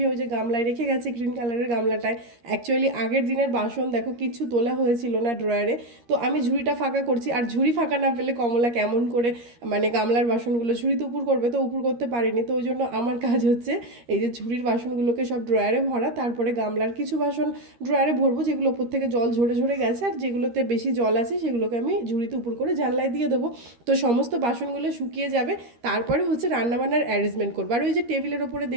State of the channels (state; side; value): late; left; 13 ms